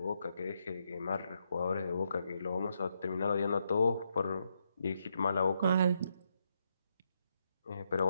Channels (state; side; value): inverted; both; correlation -0.79